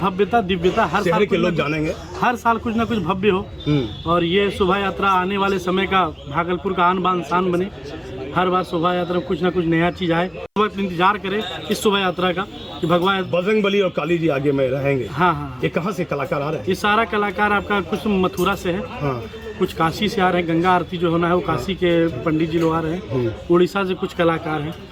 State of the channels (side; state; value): both; identical; correlation 1.00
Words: दिव्यता हर साल के लोग जानेंगे, हर साल कुछ ना कुछ भव्य हो। और ये शोभा यात्रा आने वाले समय का भागलपुर का आन बान शान बने। हर बार शोभा यात्रा में कुछ ना कुछ नया चीज आए। वक्त इंतजार करें इस शोभा यात्रा का कि भगवान बजरंग बली और काली जी आगे में रहेंगे। हाँ। ये कहाँ से कलाकार आ रहे हैं? ये सारा कलाकार आपका कुछ मथुरा से है, कुछ काशी से आ रहे हैं। गंगा आरती जो होना है वो काशी के पंडित जी लोग आ रहे हैं। उड़ीसा से कुछ कलाकार